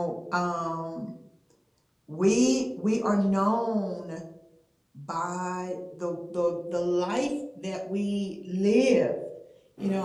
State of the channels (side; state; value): both; identical; correlation 1.00